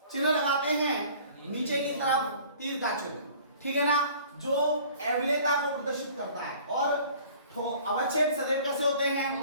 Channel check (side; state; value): both; inverted; correlation -0.50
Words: चिन्ह लगाते हैं? नीचे की तरफ तीर का चिन्ह, ठीक है ना, जो अवलेयता को प्रदर्शित करता है। और अवच्छेद सदैव कैसे होते हैं?